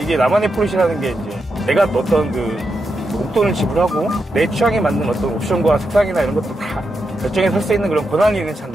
나만의 포르쉐라는 게 이제 내가 어떤 그 목돈을 지불하고 내 취향에 맞는 어떤 옵션과 색상이나 이런 것도 다 결정해서 살 수 있는 그런 권한이 있는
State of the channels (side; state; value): both; normal; correlation 0.85